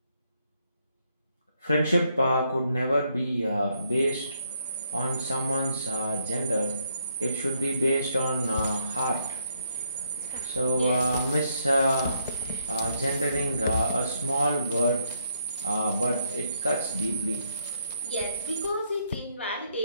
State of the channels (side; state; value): both; inverted; correlation -0.73